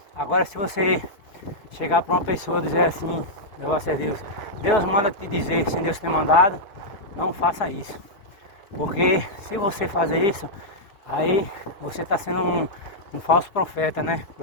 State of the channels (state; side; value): late; right; 4.7 ms